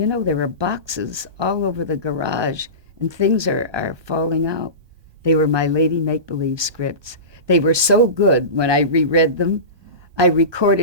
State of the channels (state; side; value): late; left; 1.2 ms